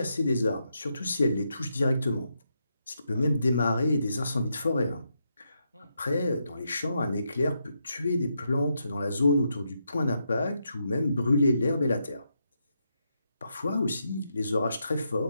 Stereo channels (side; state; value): both; inverted; correlation -0.82